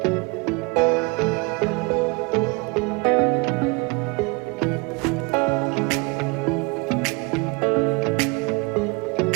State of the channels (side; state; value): left; quieter; 28.2 dB